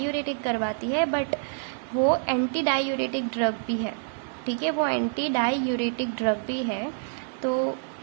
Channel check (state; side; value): silent; left; digital silence